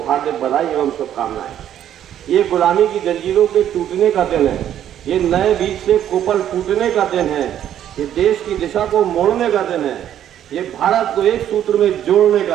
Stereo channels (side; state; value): left; quieter; 10.7 dB